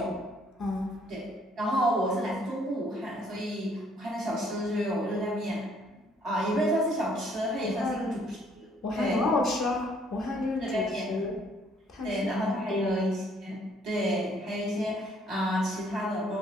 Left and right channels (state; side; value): normal; both; correlation 0.64